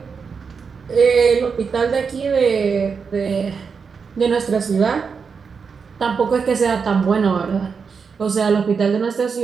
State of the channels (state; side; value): quieter; left; 5.7 dB